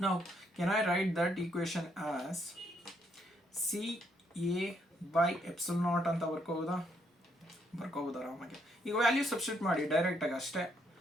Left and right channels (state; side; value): normal; both; correlation 0.73